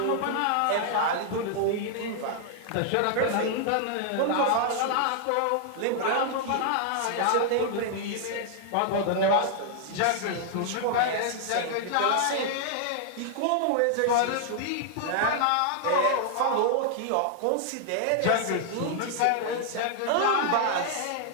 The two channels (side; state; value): both; different; correlation 0.00